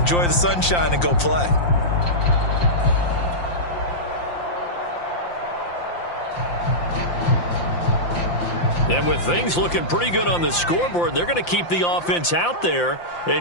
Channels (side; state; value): right; late; 5.8 ms